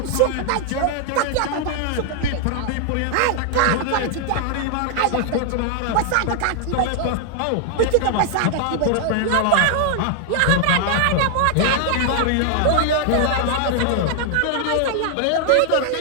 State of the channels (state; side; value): different; both; correlation 0.00